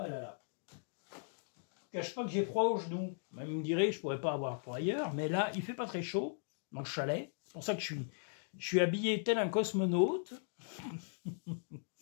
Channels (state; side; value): silent; right; digital silence